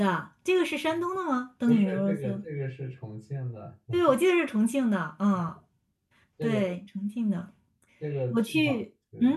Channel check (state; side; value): identical; both; correlation 1.00